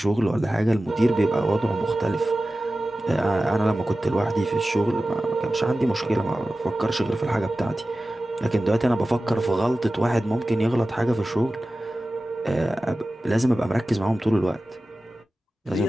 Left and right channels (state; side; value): normal; both; correlation 0.95